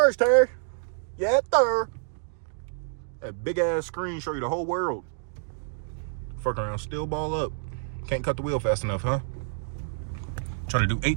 Terry. Yeah, sir. That big ass screen show you the whole world. Fuck around, still ball up. Can't cut the wheel fast enough, huh? Trying to do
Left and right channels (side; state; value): left; silent; digital silence